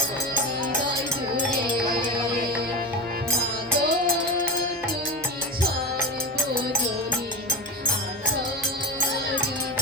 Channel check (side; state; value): both; normal; correlation 0.21